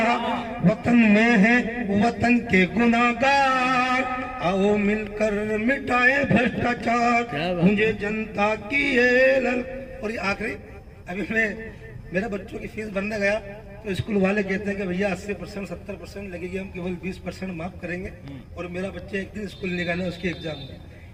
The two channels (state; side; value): identical; both; correlation 1.00